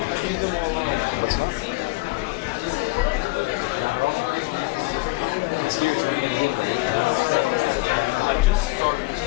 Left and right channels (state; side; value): quieter; right; 23.6 dB